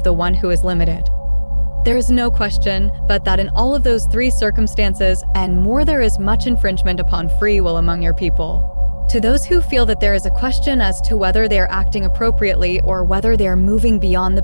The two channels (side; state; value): both; inverted; correlation -1.00